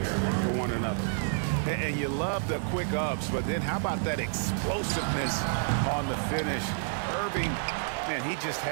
for one another. And you love the quick ups, but then how about that explosiveness on the finish? Irving, man, he just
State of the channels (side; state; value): left; silent; digital silence